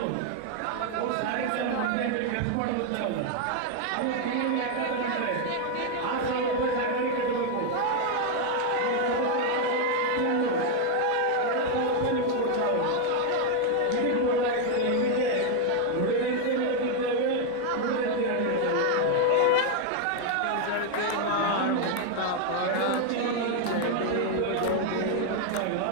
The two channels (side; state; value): both; different; correlation 0.01